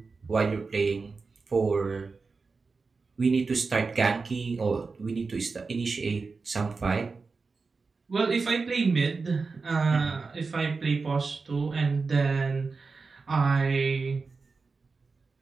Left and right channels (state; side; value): quieter; left; 4.4 dB